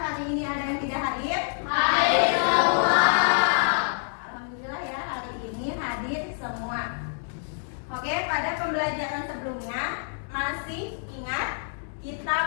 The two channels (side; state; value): right; silent; digital silence